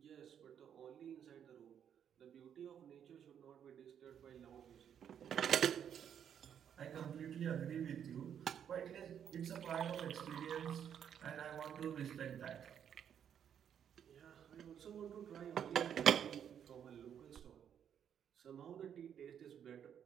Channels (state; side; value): quieter; left; 8.8 dB